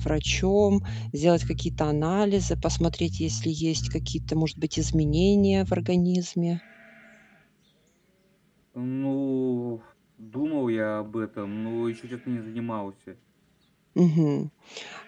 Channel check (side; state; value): both; identical; correlation 1.00